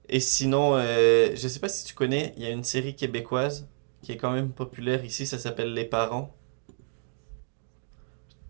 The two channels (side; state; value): left; silent; digital silence